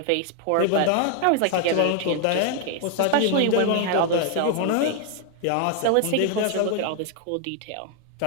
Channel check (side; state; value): both; different; correlation 0.00